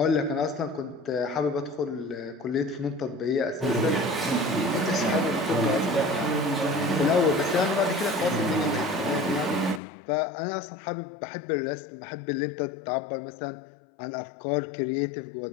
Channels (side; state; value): right; drops out; at 9.8 s